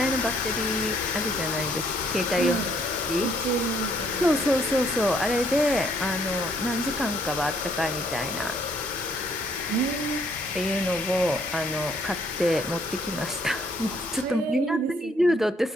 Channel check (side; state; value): both; normal; correlation 0.67